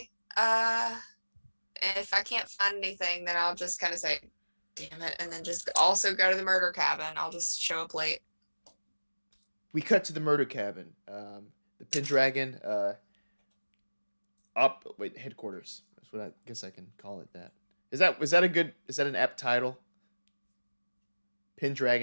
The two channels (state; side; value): inverted; both; correlation -1.00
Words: If I can't find anything, then I'll just kind of say, damn it, and then just also go to the murder cabin. I'll just show up late. We cut to the murder cabin. The Pendragon headquarters. That's what I guess I can call it that. Is that an apt title?